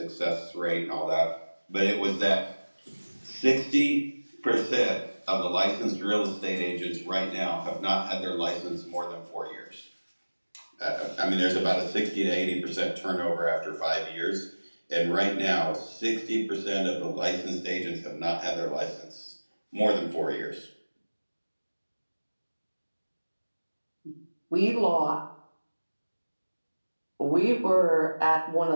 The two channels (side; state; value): both; inverted; correlation -1.00